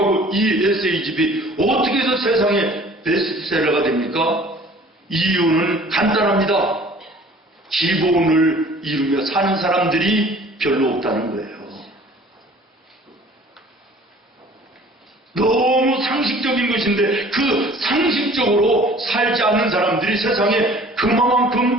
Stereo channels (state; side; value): normal; both; correlation 0.50